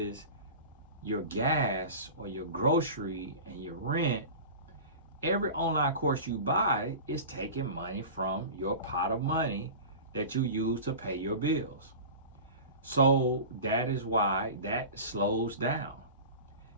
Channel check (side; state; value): both; inverted; correlation -0.34